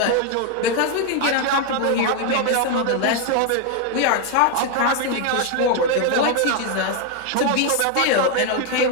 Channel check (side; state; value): both; different; correlation 0.01